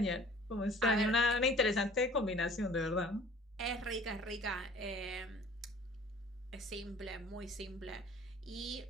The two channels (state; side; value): normal; both; correlation 0.49